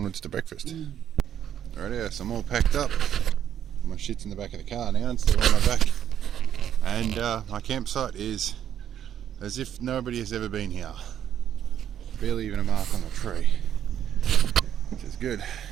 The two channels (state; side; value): quieter; left; 9.9 dB